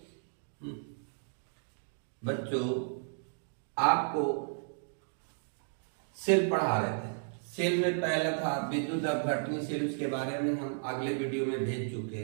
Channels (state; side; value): silent; left; digital silence